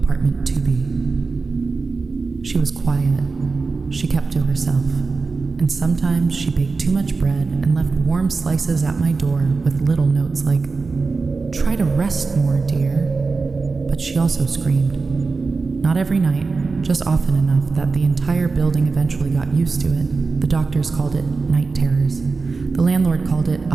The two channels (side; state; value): left; quieter; 4.2 dB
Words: 2B. She was quiet. She kept to herself, and sometimes she baked too much bread and left warm slices at my door with little notes like, "Try to rest more, dear." But she also screamed. Not every night, just often enough that the entire building eventually got used to it. The doctors called it night terrors. The landlord called it a